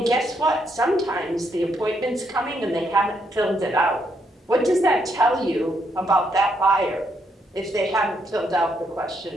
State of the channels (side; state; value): both; normal; correlation 0.76